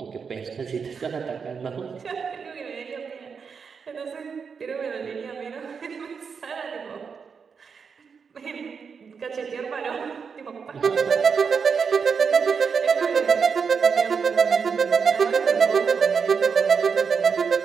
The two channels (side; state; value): left; quieter; 6.0 dB